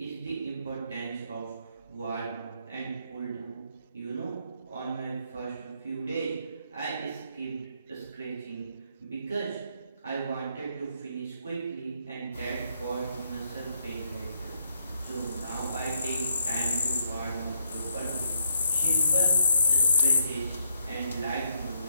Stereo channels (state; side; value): inverted; both; correlation -0.75